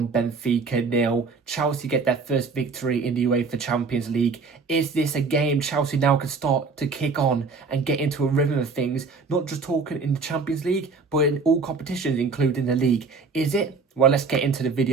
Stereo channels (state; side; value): quieter; left; 4.5 dB